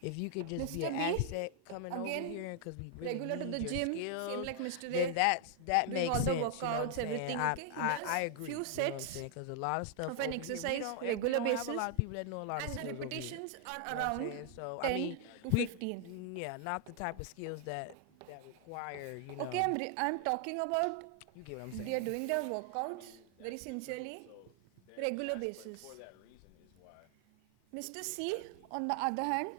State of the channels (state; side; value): different; both; correlation 0.00